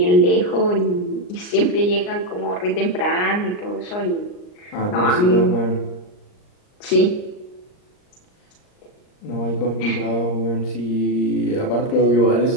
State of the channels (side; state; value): right; late; 39 ms